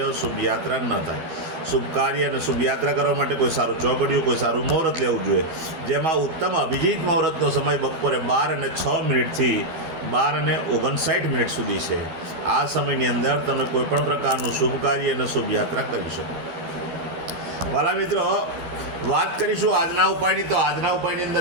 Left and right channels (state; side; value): late; left; 12 ms